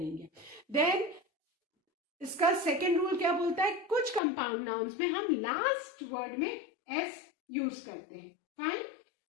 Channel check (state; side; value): drops out; right; at 4.2 s